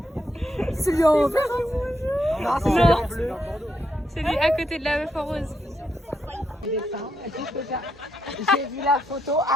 C'est lui en vert. Non, c'est Non. celui en bleu. C'est lui à côté de la meuf en rose. J'ai vu la photo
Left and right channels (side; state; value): both; normal; correlation 0.80